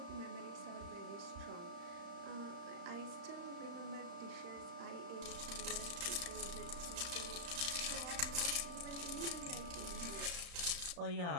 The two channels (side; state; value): left; late; 34 ms